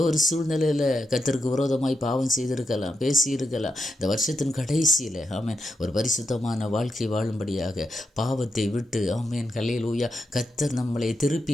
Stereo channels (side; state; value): both; normal; correlation 0.84